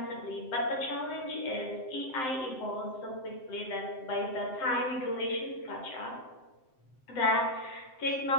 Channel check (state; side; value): late; right; 7.7 ms